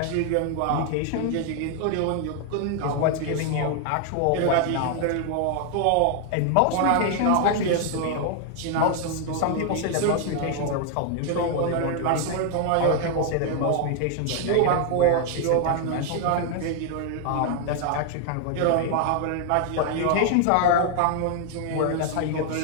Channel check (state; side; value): different; both; correlation 0.00